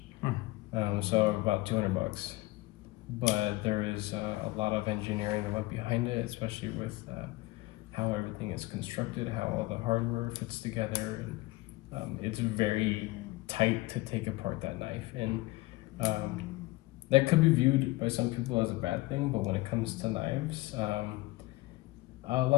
So about $200. But there is a lot of engineering that went behind it, especially with how everything is constructed, how all the hardware fits together, and it's very tight to take apart that knife. And that could be viewed by some people as a bad thing, but when it comes to knives, a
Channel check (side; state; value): right; quieter; 20.5 dB